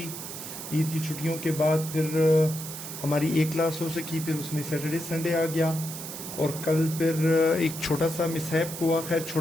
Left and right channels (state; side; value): noise; right; hiss, 9 dB below the sound